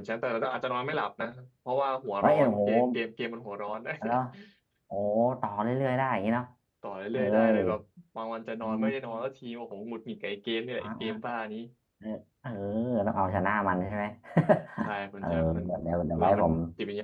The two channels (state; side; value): identical; both; correlation 1.00